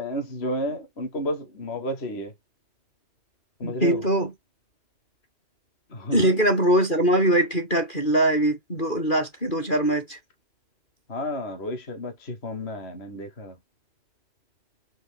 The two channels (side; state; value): right; late; 2.4 ms